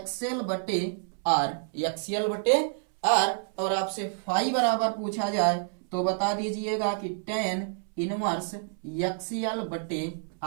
बटे आर, एक्सएल बटे आर। और आपसे फाई बराबर पूछा जाए तो बता दीजिएगा कि tan इनवर्स एक्सएल बटे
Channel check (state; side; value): silent; left; 59 dB below the other